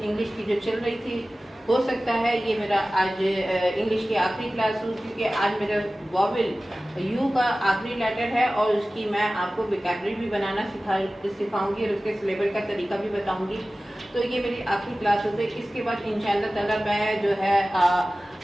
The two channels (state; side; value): normal; both; correlation 0.97